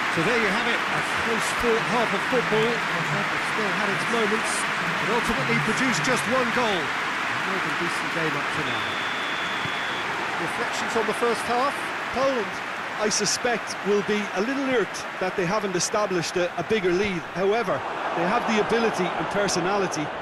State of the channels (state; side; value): identical; both; correlation 1.00